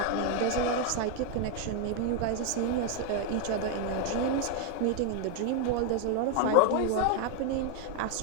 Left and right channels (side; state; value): both; different; correlation 0.00